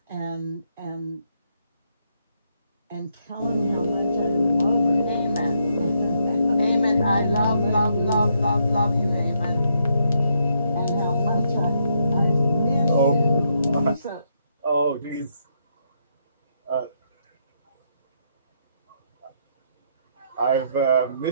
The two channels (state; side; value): inverted; both; correlation -0.76